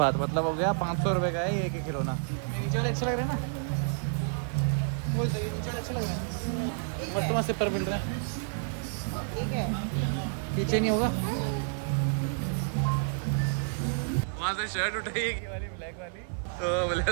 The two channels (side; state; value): left; silent; 58 dB below the other